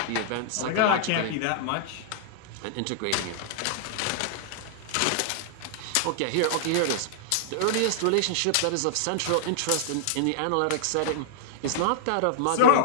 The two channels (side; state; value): both; different; correlation -0.01